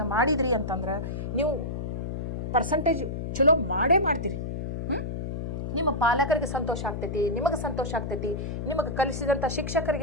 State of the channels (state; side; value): noise; left; hum, 4 dB below the sound